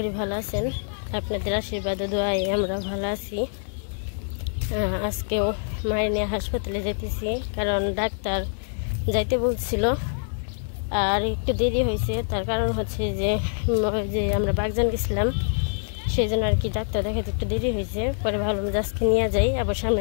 ভালো আছেন। আপনাদের আশীর্বাদ ও দোয়ায় আমরা ভালো আছি। আজকেও মায়ের নিয়ে হাসপাতালে যেতেছি, কারণ ডাক্তার যাইতে বলছিল আর একটু দেরি হয়েছে। তার কারণ হচ্ছে যে আমরা বাগজান গেছিলাম, সেই জন্য আর কি ডাক্তার দেখাতে একটু দেরি হয়েছে। পরে ভাবলাম যে আজকে নিয়ে যাই, আবার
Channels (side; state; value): right; silent; digital silence